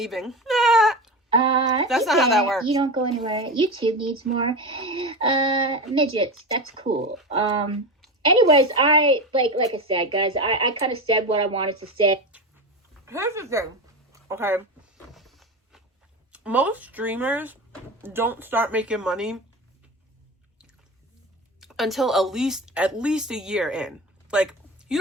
That's not how that works. You don't go anywhere. YouTube needs more midgets. That's cool. Anyways, like I said, guys, I kind of said what I wanted to say. Here's the thing, okay? Most streamers don't start making money until at least a year in. Like, you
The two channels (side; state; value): both; normal; correlation 0.23